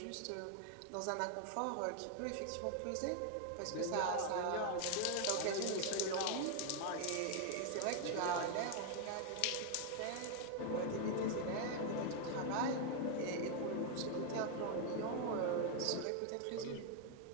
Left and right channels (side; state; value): both; different; correlation 0.00